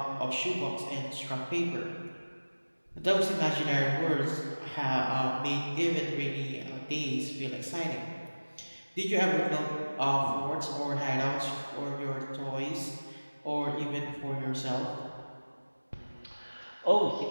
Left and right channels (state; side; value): inverted; both; correlation -1.00